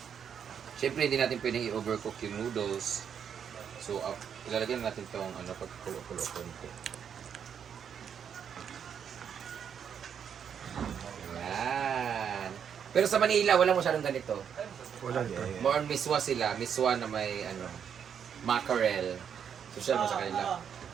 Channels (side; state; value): left; quieter; 7.9 dB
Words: Siyempre, hindi natin pwedeng i-overcook yung noodles. So, ilalagay natin itong pagkulo-kulo konti. Ayan. Pero sa Manila, wala masyadong ganito. Wala to. More on miswa sila. Miswa na may, mackerel. Social mo sa kanila.